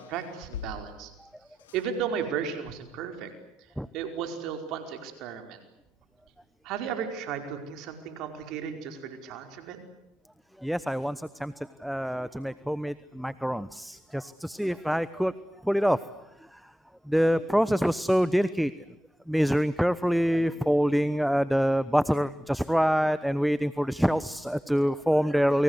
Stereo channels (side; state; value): both; normal; correlation 0.93